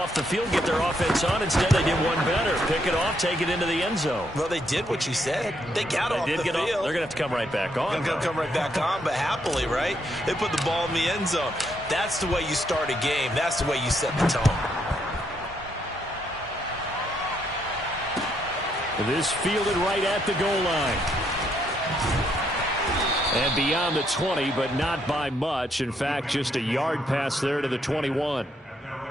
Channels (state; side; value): normal; both; correlation 0.74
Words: the field, get their offense on. Instead, they did one better. Pick it off, take it into the end zone. Well, they did what you said. They got off the field. They're going to have to come right back on. They're going to come right back on, but happily, right? They put the ball in the end zone. That's the way you start a game. That's the way you set the tone. This fielded right at the goal line. And beyond the 20, but not by much. In fact, just a yard pass there to the 21.